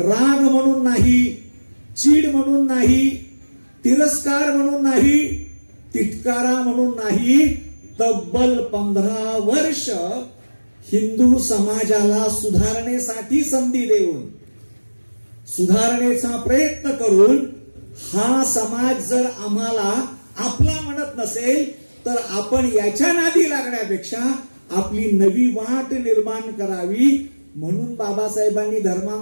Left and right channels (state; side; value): inverted; both; correlation -1.00